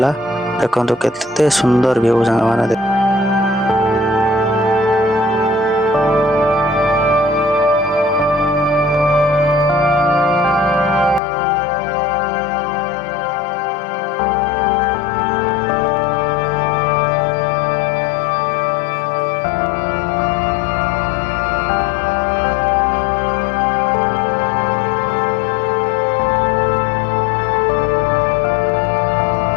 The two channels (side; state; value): right; drops out; at 11.2 s